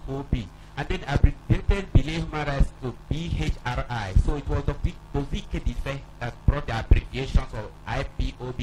and then abbreviated Belay Human Rights to BHRI. So it was Dr. Dozie Ikedife that brought the abbreviations of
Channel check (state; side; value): identical; both; correlation 1.00